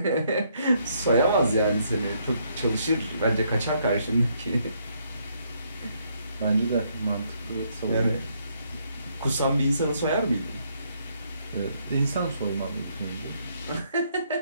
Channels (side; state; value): both; inverted; correlation -0.71